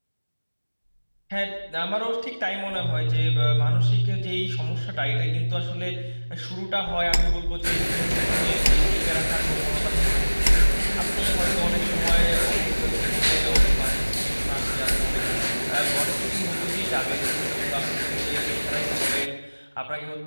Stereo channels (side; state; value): both; inverted; correlation -1.00